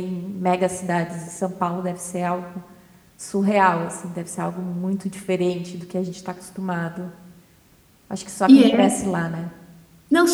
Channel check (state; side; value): identical; both; correlation 1.00